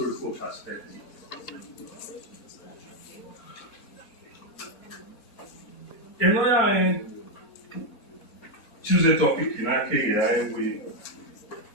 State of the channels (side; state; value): both; normal; correlation 0.03